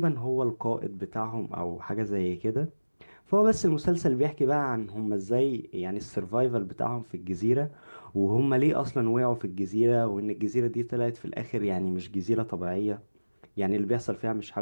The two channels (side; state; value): both; inverted; correlation -1.00